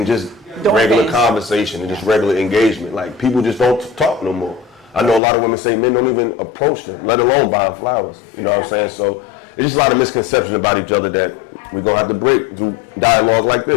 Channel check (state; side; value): drops out; right; at 5.2 s